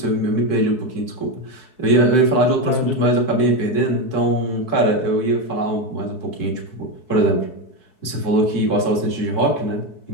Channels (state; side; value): late; right; 4.6 ms